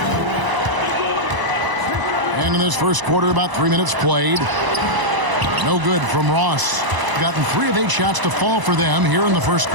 And in this first quarter, about 3 minutes played. No good from Ross. Gotten 3 of 8 shots to fall for them here in the first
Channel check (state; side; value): late; left; 1.0 ms